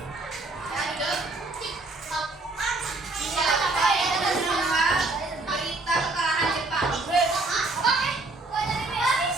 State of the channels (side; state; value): left; quieter; 3.2 dB